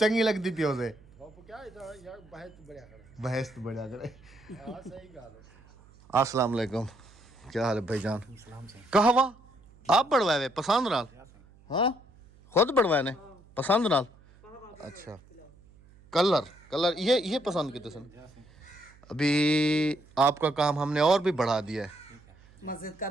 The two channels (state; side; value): noise; right; hum, 26 dB below the sound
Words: लगती पियो से बहस तो बढ़िया करे। अस्सलाम वालेकुम, क्या हाल है भाईजान? कहवा आप बढ़वाए पसंद नाल? हाँ खुद बढ़वाए ने पसंद नाल? अच्छा कलर ये पसंद किते सन? अभी आपका काम हमने और भी बढ़ा दिया है। मस्जिद का